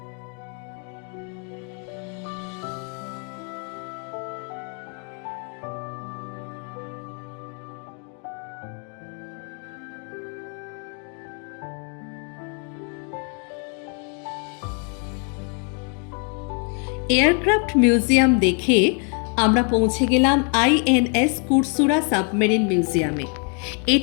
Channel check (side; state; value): right; quieter; 39.4 dB